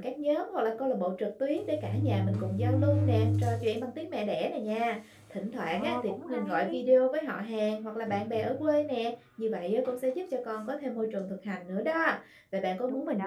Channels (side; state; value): both; identical; correlation 1.00